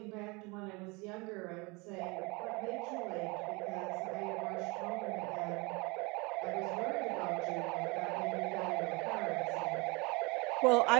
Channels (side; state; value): left; quieter; 27.2 dB